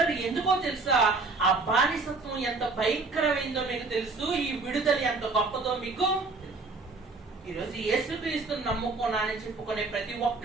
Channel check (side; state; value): left; quieter; 3.8 dB